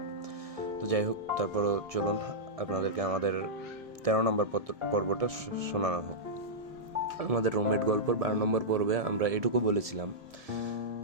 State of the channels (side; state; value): left; late; 1.7 ms